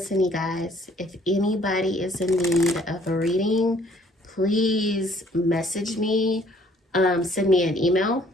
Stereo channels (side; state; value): both; normal; correlation 0.60